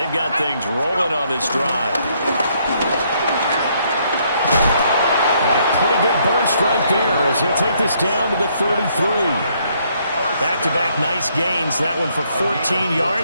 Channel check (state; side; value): inverted; both; correlation -0.70